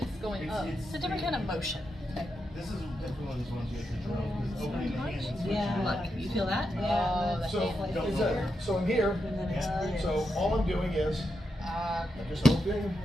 going up. it's a different kind of motion. This is definitely one of these ones you have to drill, because opening the hands. Yeah. Look, you feel that? Oh, the So, hand. is that, so in here, so all I'm doing is, I'm just opening,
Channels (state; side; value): normal; both; correlation 0.86